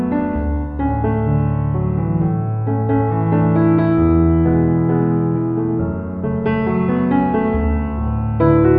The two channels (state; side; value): identical; both; correlation 1.00